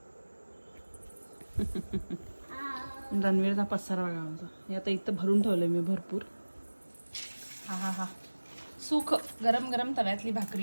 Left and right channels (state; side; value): inverted; both; correlation -1.00